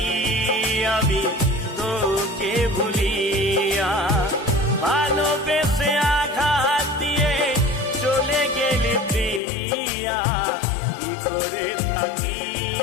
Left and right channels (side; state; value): right; drops out; at 9.4 s